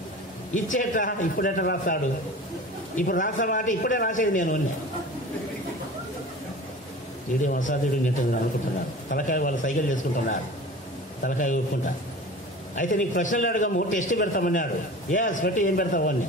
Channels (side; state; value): both; normal; correlation 0.37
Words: ఇచ్చేట ఇప్పుడెట రాస్తాడు? ఇప్పుడు రాస్తామాట ఇప్పుడే రాసేది నేను ఉన్నా. వీడియో అసాధ్యుడు నెట్టుంది అనుకుంటున్నారు. తలకాయ వాళ్ళు సైకిల్ చేసుకుంటున్నారు, తలకాయ ఊపుకుంటా. అయితే నీకు ప్రశ్నలు అడగము, టెస్ట్ పెడతామన్నాడు. పెట్టి ఏం పెడతావు